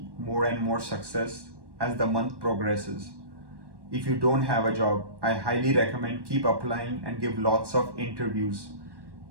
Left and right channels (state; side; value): late; left; 1.1 ms